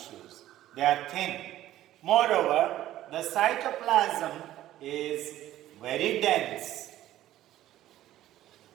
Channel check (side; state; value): left; quieter; 13.7 dB